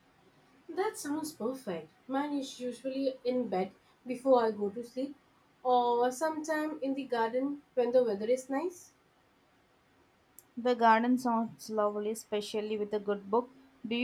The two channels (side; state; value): both; identical; correlation 1.00